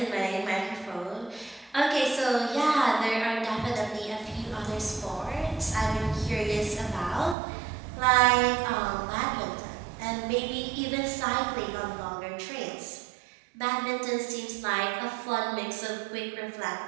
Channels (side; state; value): left; drops out; at 7.4 s